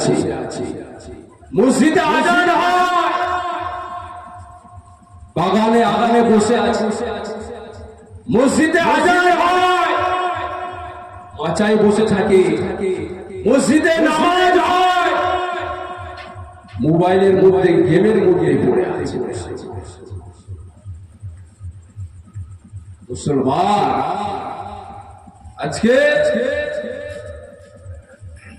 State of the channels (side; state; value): both; identical; correlation 1.00